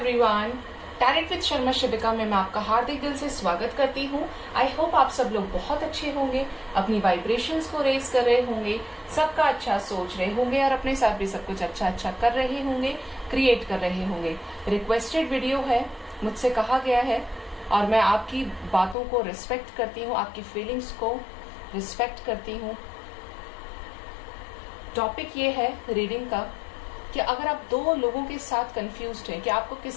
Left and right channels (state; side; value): drops out; right; at 18.9 s